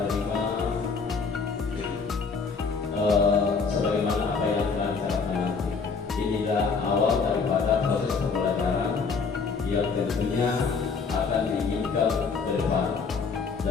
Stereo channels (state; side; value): quieter; right; 5.0 dB